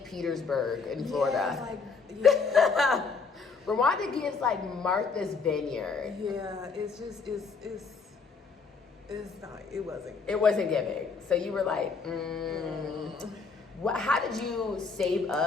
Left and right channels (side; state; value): right; quieter; 4.9 dB